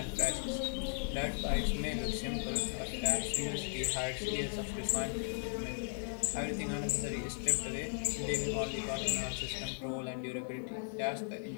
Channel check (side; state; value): right; silent; digital silence